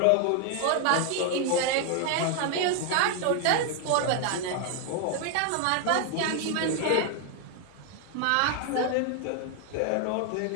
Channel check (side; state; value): both; different; correlation 0.00